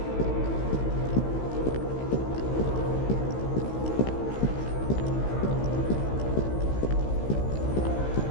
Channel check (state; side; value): late; right; 16 ms